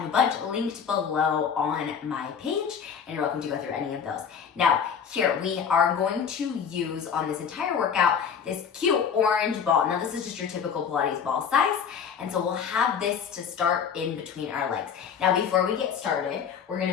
a bunch linked below on my page, and you're welcome to go through any of those. Now, here we are going to use on this entire workout this cute orange ball. Now, this is just your typical Pilates ball size, and so we'll have this to start in between our legs. Now, before we get started, we're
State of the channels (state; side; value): quieter; right; 7.1 dB